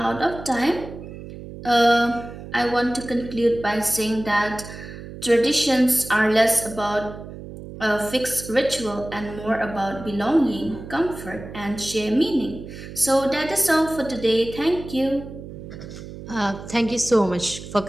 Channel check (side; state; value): right; noise; hum, 13 dB below the sound